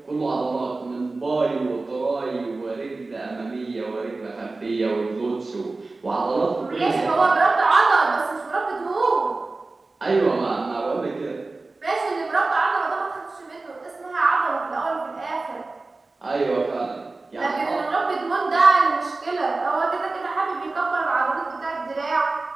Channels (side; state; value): left; quieter; 3.4 dB